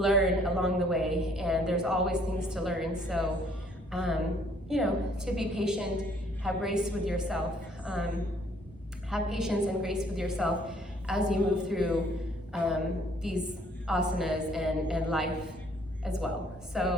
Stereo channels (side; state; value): both; normal; correlation 0.62